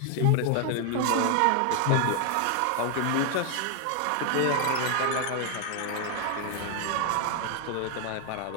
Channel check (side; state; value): both; different; correlation 0.00